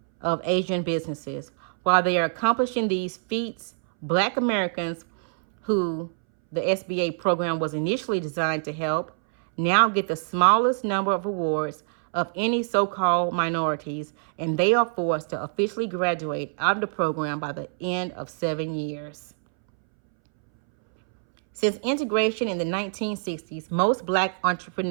of Asian businesses. While they are accomplishing these feats, Black Americans, who the SBA program was initially designed to help, now get the smallest number of awards of any so-called minorities, and they are forced to officially graduate out of the program by the end of 7 years. Since integration in the 1960s, most Black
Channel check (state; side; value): silent; left; 62 dB below the other